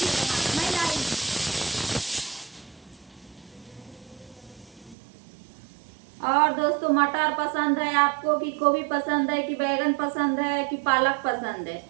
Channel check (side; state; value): left; drops out; at 5.0 s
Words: नहीं लाई। और दोस्तों मटर पसंद है आपको कि गोभी पसंद है कि बैगन पसंद है कि पालक पसंद है।